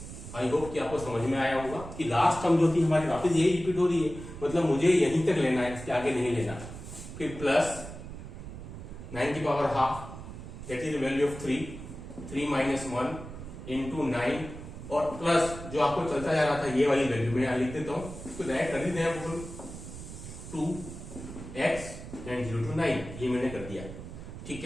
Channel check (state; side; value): noise; right; rumble, 11 dB below the sound